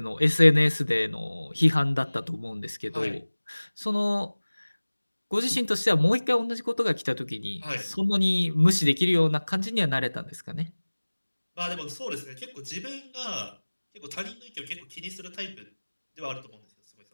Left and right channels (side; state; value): both; inverted; correlation -1.00